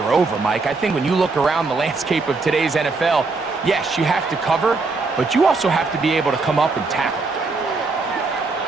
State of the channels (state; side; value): quieter; left; 3.9 dB